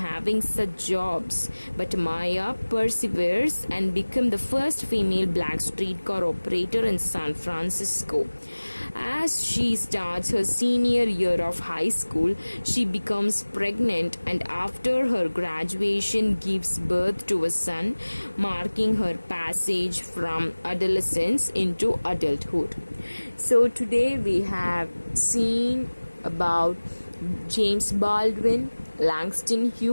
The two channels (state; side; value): inverted; both; correlation -1.00